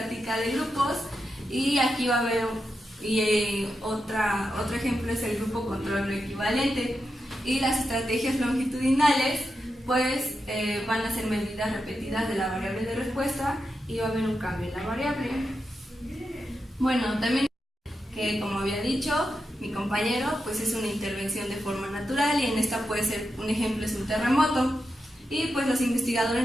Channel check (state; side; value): normal; both; correlation 0.88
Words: de grupos, y aquí va a haber otro ejemplo es el grupo control no equivalente. Y las estrategias longitudinales pues van a ser medidas repetidas de la variable de respuesta y va a haber un cambio en la variable. También que, como había dicho mi compañero, pues es una intervención de forma natural, y en esta puede ser un ejemplo es un terremoto, y pues los